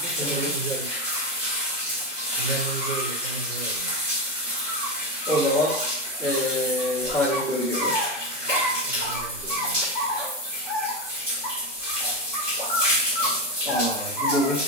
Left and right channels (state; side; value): normal; both; correlation 0.12